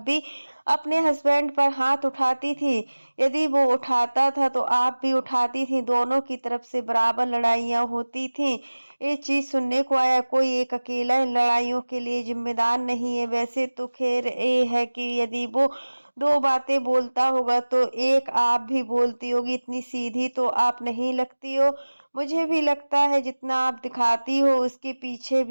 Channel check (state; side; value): inverted; both; correlation -1.00